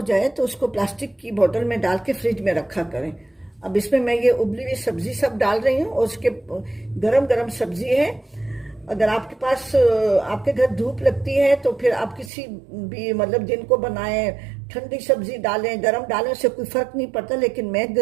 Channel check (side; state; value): left; drops out; at 12.3 s